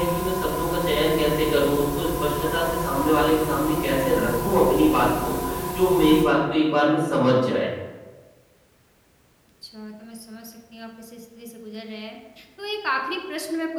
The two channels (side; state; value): both; identical; correlation 1.00